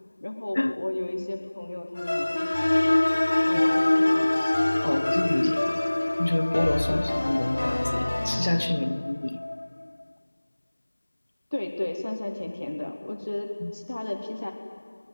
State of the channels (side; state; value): both; inverted; correlation -1.00